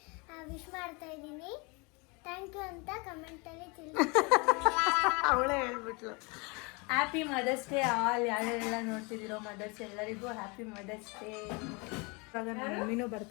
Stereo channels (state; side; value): quieter; right; 29.3 dB